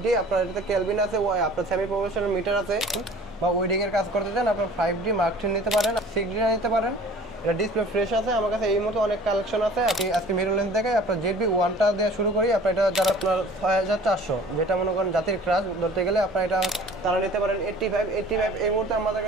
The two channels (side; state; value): both; normal; correlation 0.47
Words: আপনার এটাতে কেলভিন আছে, আপনার সেমি প্রফেশনাল মিটার আছে, বা ওয়েডিং এর কাজ করতে চান আপনার 5D Mark III নিতে পারেন, 6D নিতে পারেন। এটা ডিসপ্লে ফ্রেশ আছে, আমার কাছে এই মতো অনেক কালেকশন আছে। আপনি আজকে মিরর লেন্স দেখে আপনার ZB-1টা দিয়ে শুরু করি। আপনার এটা যারা আপনার 6400 যেটা মনে করেন জাতির ক্রাশ ধরতে গেলে আপনার এটা তারা নিতে পারেন। 85 এই মুহূর্তে আমাদের